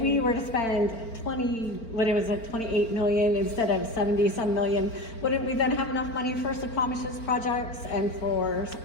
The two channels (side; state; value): right; late; 4.4 ms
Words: we were to spend 28 million instead of 70-some million, wouldn't we then have enough money for Squamish's projects and for